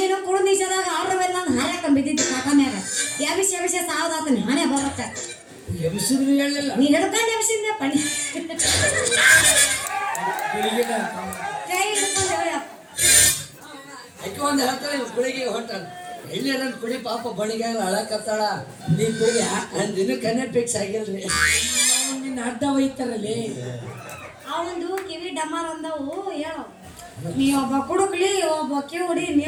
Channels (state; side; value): identical; both; correlation 1.00